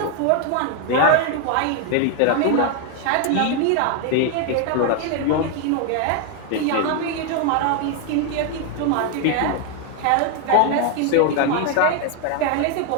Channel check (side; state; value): both; different; correlation 0.01